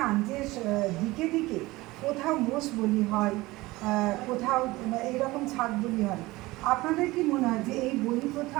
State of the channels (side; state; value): left; quieter; 20.0 dB